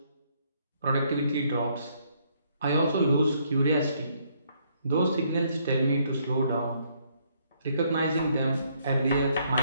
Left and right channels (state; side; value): inverted; both; correlation -0.70